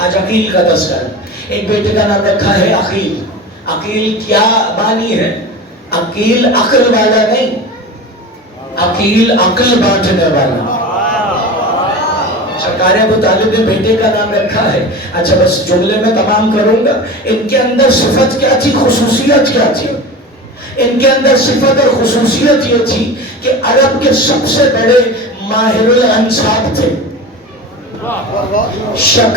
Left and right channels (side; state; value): both; normal; correlation 0.31